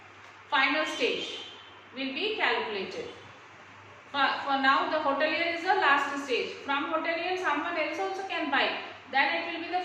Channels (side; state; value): both; identical; correlation 1.00